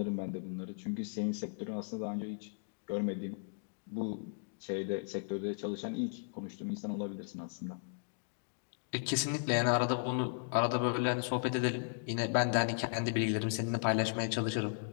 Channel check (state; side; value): silent; right; digital silence